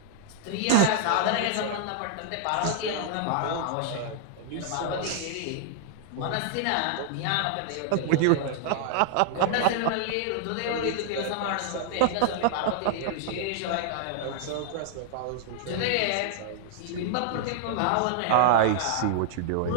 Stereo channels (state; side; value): different; both; correlation -0.01